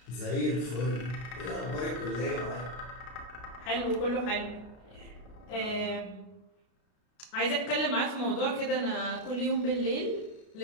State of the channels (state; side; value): late; right; 33 ms